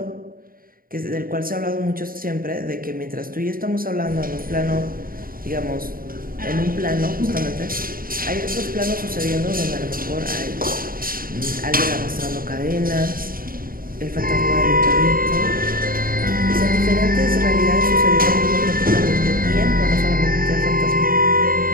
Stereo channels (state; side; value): late; left; 0.42 ms